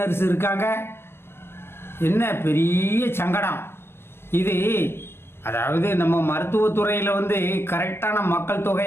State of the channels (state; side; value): late; right; 0.12 ms